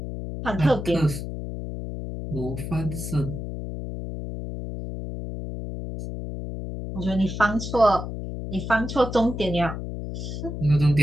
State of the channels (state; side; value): noise; left; hum, 7 dB below the sound